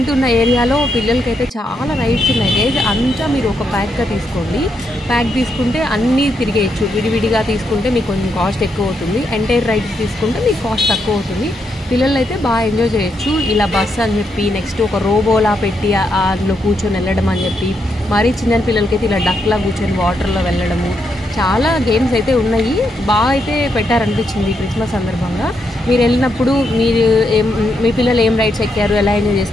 ఉన్న ఏరియాలో పిల్లలకైతే చాలా రైడ్స్ ఉన్నాయి గైస్. అంతా మీరు ఒక ప్యాక్గా తీసుకోండి. ప్యాక్ తీసుకుంటే అన్నీ తిరిగేయచ్చు. విడివిడిగా తీసుకుంటే మీకు కొంచెం కాస్ట్ ఎక్కువ అవుతుంది. ఎంటైర్ రైడ్స్ తీసుకుంటే మీకు కాస్ట్ తక్కువ అవుతుంది. పిల్లలు అయితే బాగా ఎంజాయ్ చేయొచ్చు. ఇలా బస్ అని చెప్పి నెక్స్ట్ ఒక రోబోలా పెట్టి అందులో కూర్చొని వెళ్ళడం అని చెప్పి, మరీ చిన్న పిల్లలకైతే ఇలా డక్లా కూర్చొని వాటర్లో వెళ్ళడము, చాలా గేమ్స్ అయితే ఉన్నాయి. బాగా అయితే పెట్టారనిపించింది క్రిస్మస్ సందర్భంగా. మీరు వెళ్ళినప్పుడు మీ పిల్లలు ఏం రైడ్స్ ఎక్కారు, ఎలా ఎంజాయ్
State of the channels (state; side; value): normal; both; correlation 0.80